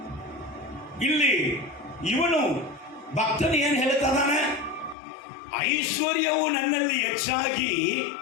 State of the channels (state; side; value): drops out; right; at 5.0 s